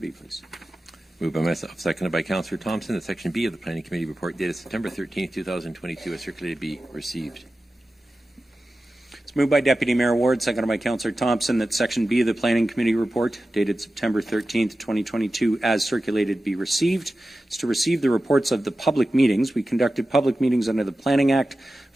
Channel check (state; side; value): normal; both; correlation 0.94